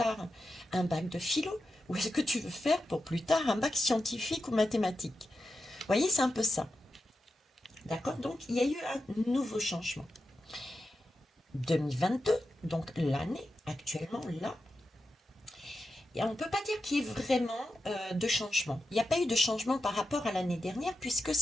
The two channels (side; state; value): both; normal; correlation 0.90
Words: un bac de philo ou est-ce que tu veux faire pour plus tard un bac scientifique ou mathématique? Vous voyez, c'est un peu ça. D'accord? Donc, il y a eu un nouveau changement. 2022, donc l'année actuellement, là, et on ne peut pas dire qu'il y ait vraiment de changement. Il n'y a pas eu de changement par rapport à l'année dernière puisque